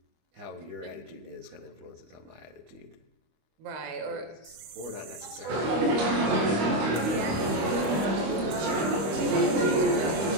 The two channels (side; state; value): left; late; 25 ms